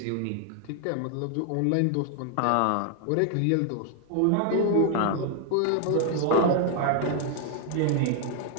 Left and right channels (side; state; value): both; different; correlation 0.00